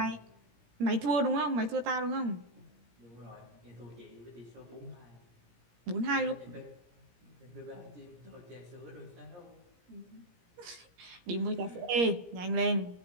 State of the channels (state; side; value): late; left; 17 ms